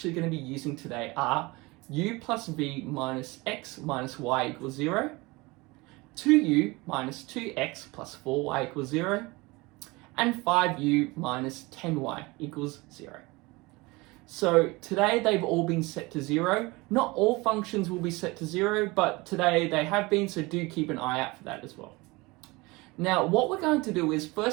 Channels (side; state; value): left; quieter; 23.5 dB